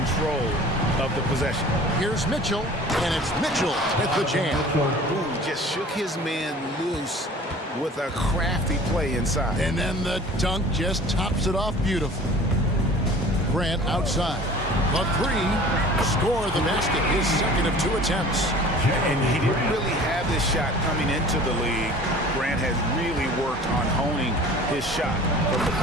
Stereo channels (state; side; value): normal; both; correlation 0.45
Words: of the possession. Here's Mitchell, and it's Mitchell with the jam. Ooh, just shook his man loose with a crafty play inside. And then the dunk just tops it off beautifully. Grant outside. The 3, score the basket, his second of 2 attempts. And he didn't really have this shot coming into the league. Grant has really worked on honing his shot from the